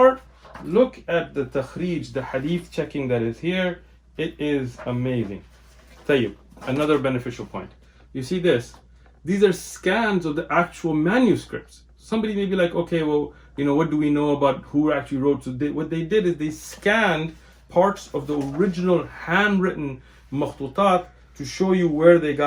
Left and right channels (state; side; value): identical; both; correlation 1.00